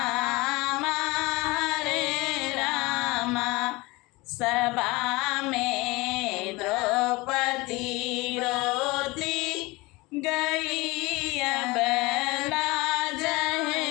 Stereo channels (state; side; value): quieter; right; 22.9 dB